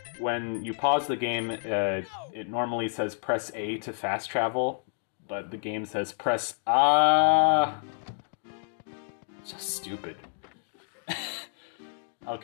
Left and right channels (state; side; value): silent; right; digital silence